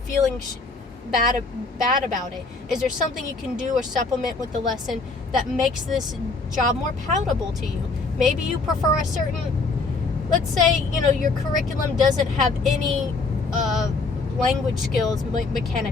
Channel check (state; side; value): quieter; right; 3.8 dB